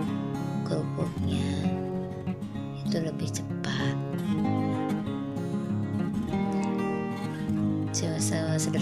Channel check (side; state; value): both; identical; correlation 1.00